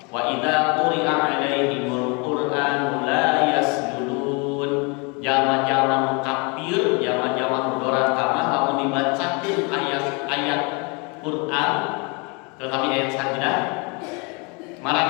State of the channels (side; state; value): right; quieter; 31.4 dB